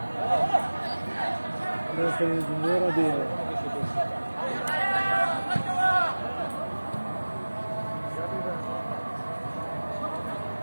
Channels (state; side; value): inverted; both; correlation -1.00